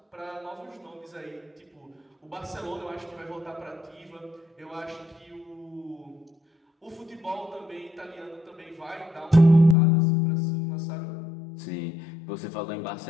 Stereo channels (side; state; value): right; drops out; at 9.8 s